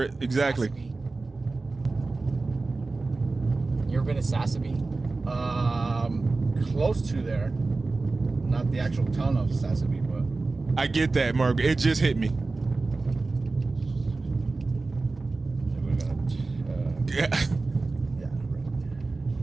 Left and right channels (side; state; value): left; quieter; 3.6 dB